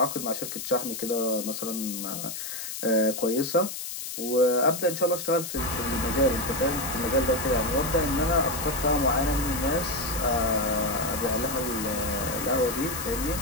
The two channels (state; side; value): noise; left; hiss, 7 dB below the sound